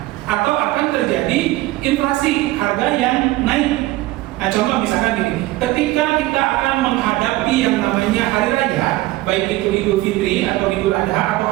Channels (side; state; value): left; quieter; 18.2 dB